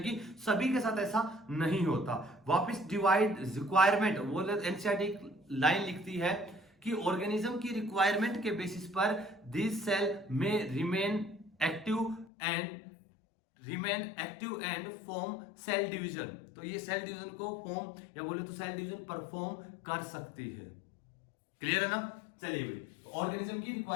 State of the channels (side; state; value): right; drops out; at 12.2 s